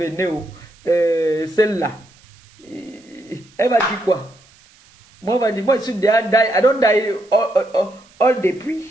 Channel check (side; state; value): right; noise; hiss, 29 dB below the sound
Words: celle-là. Elle va dire quoi? Moi, elle va dire, moi, je suis déjà die. I don't die all depuis.